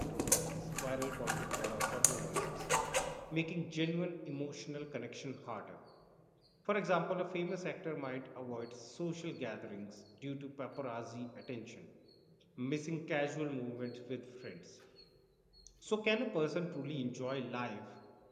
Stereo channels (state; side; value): identical; both; correlation 1.00